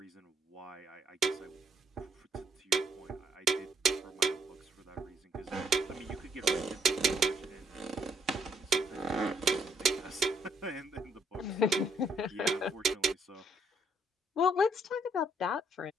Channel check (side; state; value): both; normal; correlation 0.70